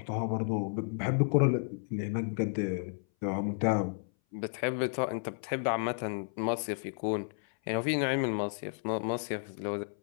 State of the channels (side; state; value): right; silent; 56 dB below the other